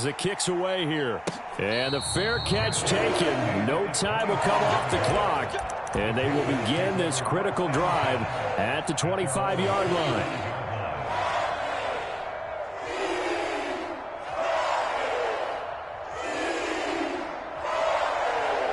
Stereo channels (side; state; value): both; identical; correlation 1.00